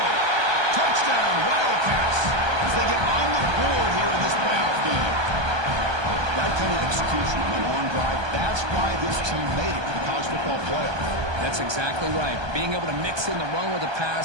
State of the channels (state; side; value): late; left; 1.2 ms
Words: Touchdown, Wildcats, as they get on the board here in this playoff game. That kind of execution on a long drive, that's why this team made it to the college football playoff. That's exactly right. Being able to mix in the run with the